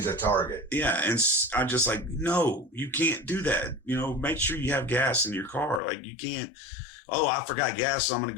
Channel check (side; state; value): right; drops out; at 5.8 s